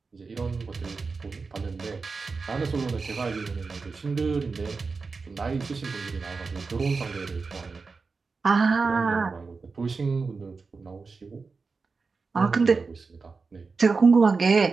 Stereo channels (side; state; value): left; quieter; 4.5 dB